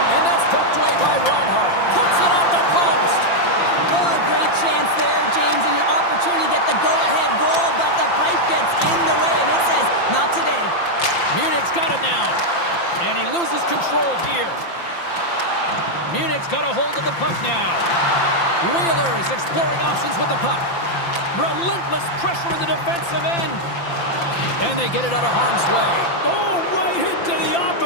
And that's poked away by Reinhart. Puts it off the post. Oh, a great chance there, James, and an opportunity to get the go-ahead goal, but the pipe gets in the way, and it says, not today. Munich's got it now. And he loses control here. Munich's got a hold of the puck now. Wheeler is exploring options with the puck. Relentless pressure in the defensive end. And they get it out of harm's way. Oh, right into the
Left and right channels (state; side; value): late; right; 5.8 ms